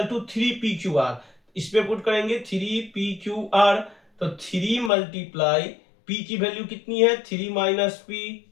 to 3PQR। इस पे पुट करेंगे 3PQR। तो 3 मल्टीप्लाई P की वैल्यू कितनी है 3 माइनस P,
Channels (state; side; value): drops out; right; at 4.9 s